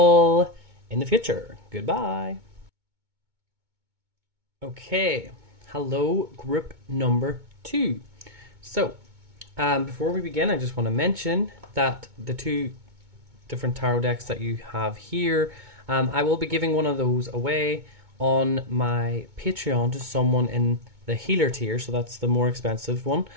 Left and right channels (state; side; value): late; left; 2.2 ms